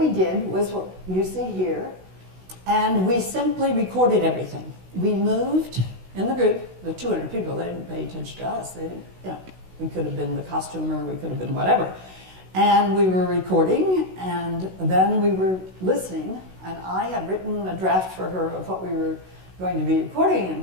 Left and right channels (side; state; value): left; late; 16 ms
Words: did was what you see here, and we simply recorded everything. We moved in the group, the 200 people, they didn't pay attention to us. They didn't, we could have been the costumer, we could have been whatever. And we were recording, and then we were listening, and I had written a draft for her of what we were going to be recording